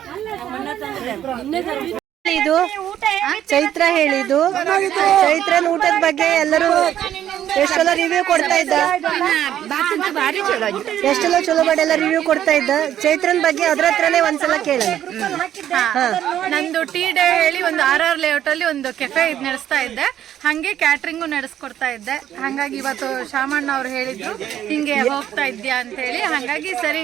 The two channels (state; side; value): quieter; left; 11.0 dB